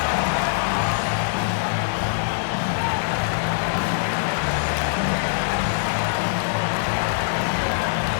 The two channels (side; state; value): right; silent; digital silence